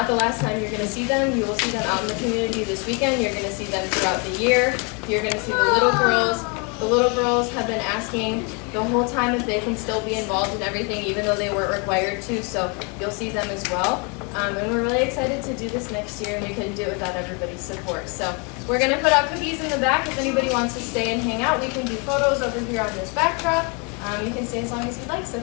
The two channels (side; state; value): right; quieter; 33.4 dB